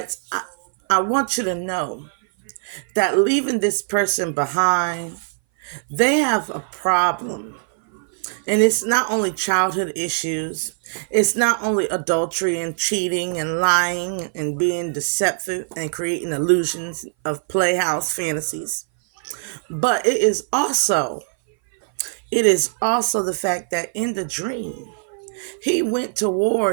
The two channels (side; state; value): left; silent; 59 dB below the other